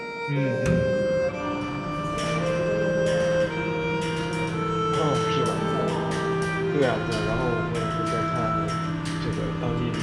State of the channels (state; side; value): identical; both; correlation 1.00